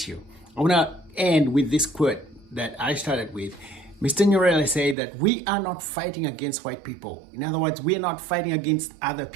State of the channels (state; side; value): drops out; left; at 5.0 s